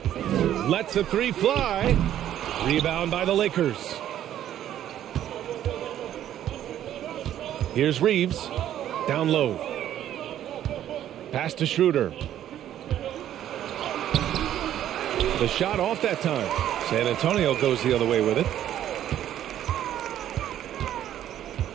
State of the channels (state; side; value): quieter; left; 11.4 dB